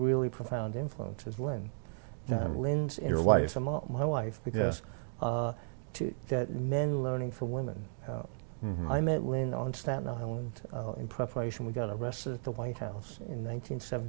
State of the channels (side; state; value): left; silent; digital silence